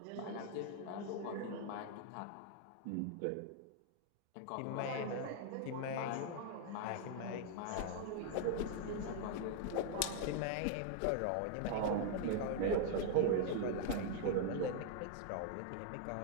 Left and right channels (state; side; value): different; both; correlation 0.00